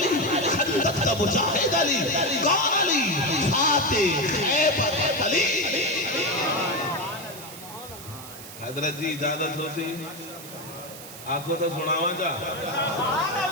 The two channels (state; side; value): noise; right; hiss, 14 dB below the sound